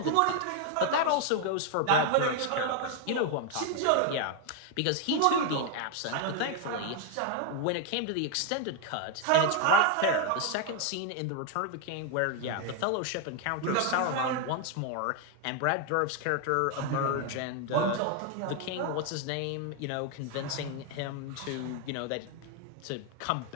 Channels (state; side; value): different; both; correlation 0.01